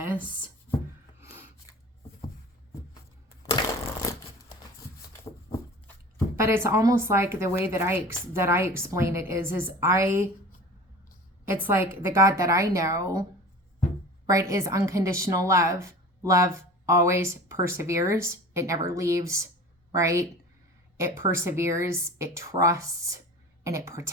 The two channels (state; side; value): normal; both; correlation 0.38